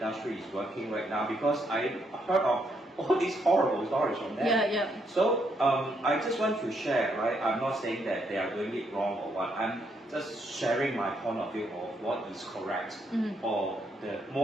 is working right now because I heard of all these horrible stories from them. So I just want to share, right? I'm not saying that they are doing it wrong or what. I'm just sharing my point of view of what is correct or the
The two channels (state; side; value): normal; both; correlation 0.75